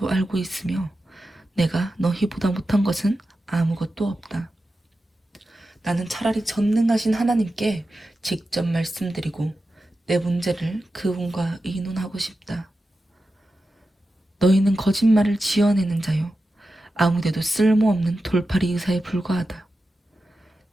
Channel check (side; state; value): both; normal; correlation 0.92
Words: 알고 있으며 내가 너희보다 못한 것은 아무것도 없다. 나는 차라리 전능하신 하나님께 직접 말씀드리고 내 문제를 그분과 의논하고 싶다. 너희는 거짓말을 지어내는 자요 아무데도 쓸모없는 돌팔이 의사에 불과하다.